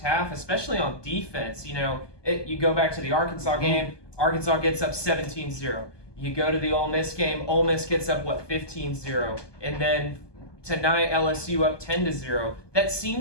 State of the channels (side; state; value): right; late; 1.2 ms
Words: half, especially on defense. You go back to the Arkansas game, Arkansas gets up 17-0. You go to the Ole Miss game, Ole Miss gets up, 15-0. And then tonight, LSU up 10-0. That